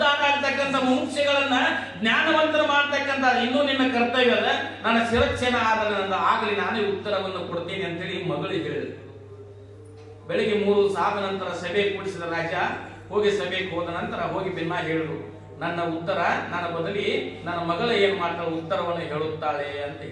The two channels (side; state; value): both; identical; correlation 1.00